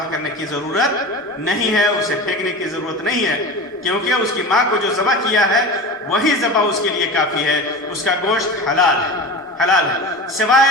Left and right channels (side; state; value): both; normal; correlation 0.30